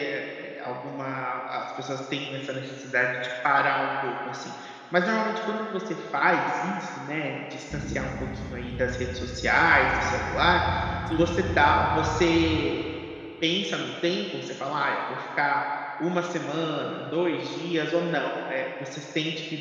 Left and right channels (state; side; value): identical; both; correlation 1.00